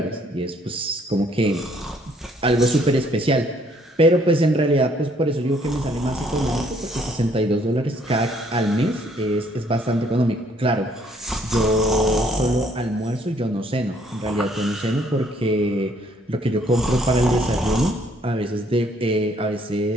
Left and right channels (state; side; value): normal; both; correlation 0.65